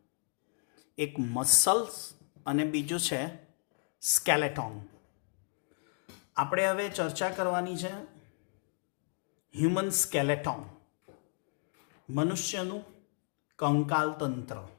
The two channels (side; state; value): right; silent; digital silence